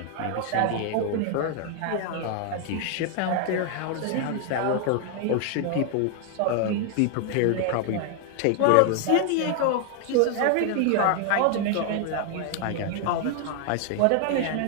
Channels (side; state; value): both; different; correlation 0.00